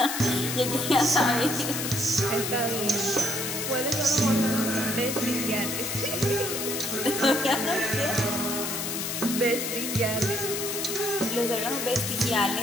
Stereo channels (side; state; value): left; noise; hiss, 3 dB below the sound